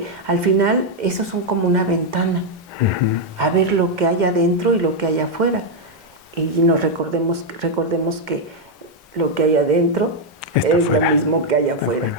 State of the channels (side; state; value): both; normal; correlation 0.00